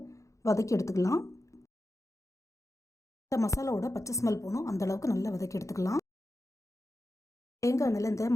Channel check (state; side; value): late; right; 0.15 ms